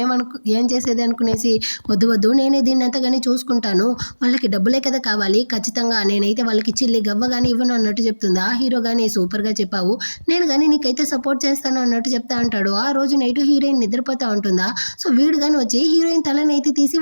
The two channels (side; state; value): both; inverted; correlation -1.00